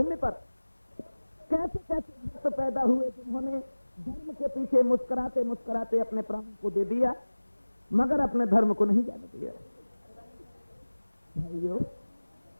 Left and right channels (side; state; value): both; inverted; correlation -1.00